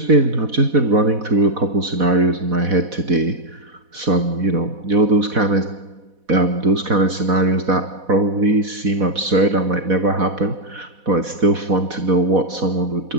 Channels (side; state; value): left; late; 4.1 ms